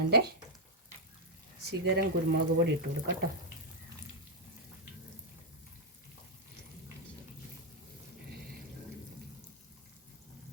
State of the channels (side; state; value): both; normal; correlation -0.02